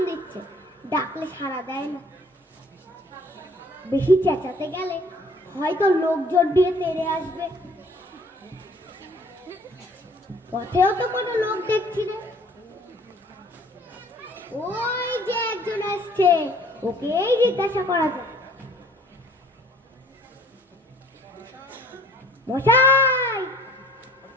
দিচ্ছে, ডাকলে সাড়া দেয় না। বেশি চেঁচাতে গেলে হয়তো লোকজন দিয়ে তেড়ে আসবে। পথেও তো কোনো লোক দেখছি না। ওই যে একজন আসছে, ওকেই জিজ্ঞাসা করা যাক। মশাই,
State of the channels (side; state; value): both; normal; correlation 0.54